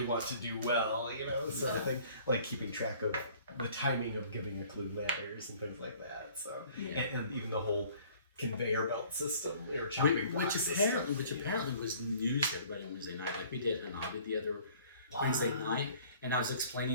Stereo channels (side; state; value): both; inverted; correlation -0.53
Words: want to do well, you know, sort of thing. Like keeping track of the timing of giving a clue matters and things like that. So, Yeah. and even the whole conveyor belt system or chopping block Which system. apparently was news to everybody on Wednesday night. Like we did Hanabi the other Wednesday night, and I was